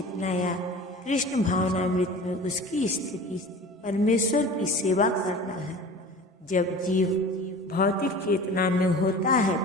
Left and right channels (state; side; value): normal; both; correlation 0.39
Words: या कृष्ण भावनामृत में उसकी स्थिति परमेश्वर की सेवा करना है। जब जीव भौतिक चेतना में होता है